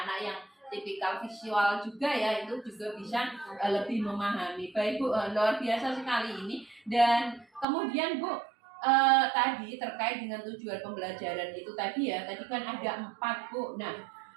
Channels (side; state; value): left; drops out; at 7.7 s